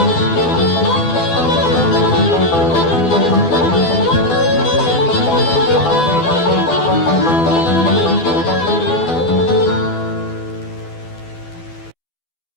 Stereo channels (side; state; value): right; late; 12 ms